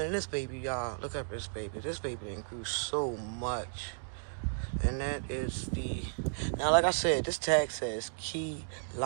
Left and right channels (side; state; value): left; silent; digital silence